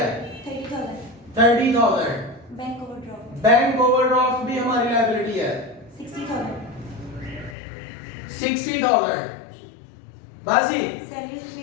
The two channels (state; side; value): drops out; right; at 7.6 s